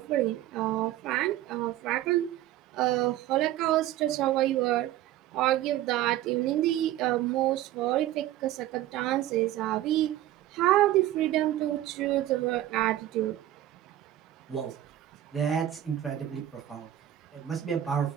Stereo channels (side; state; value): left; quieter; 13.5 dB